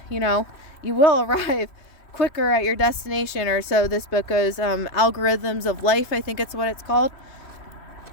you will arrive quicker at your destination, or so this book goes, Algorithms of Life, I think it's what it's called,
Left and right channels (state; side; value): late; right; 3.1 ms